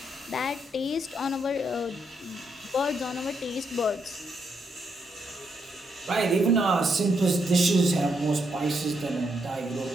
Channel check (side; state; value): both; normal; correlation 0.78